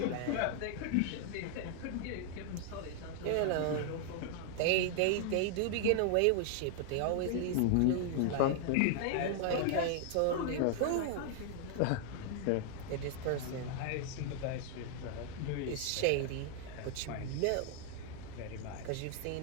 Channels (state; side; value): different; both; correlation 0.00